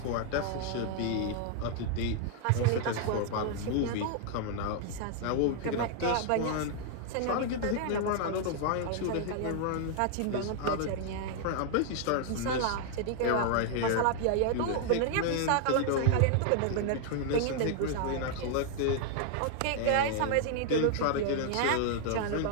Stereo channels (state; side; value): different; both; correlation 0.00